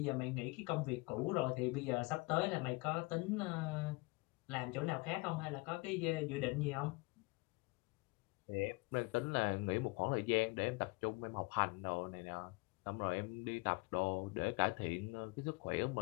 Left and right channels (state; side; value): quieter; right; 26.3 dB